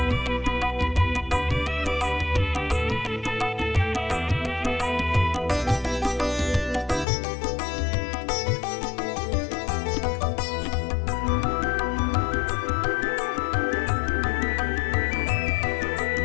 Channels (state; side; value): drops out; right; at 7.1 s